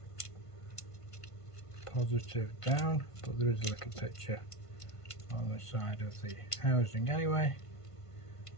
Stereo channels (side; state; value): right; late; 1.5 ms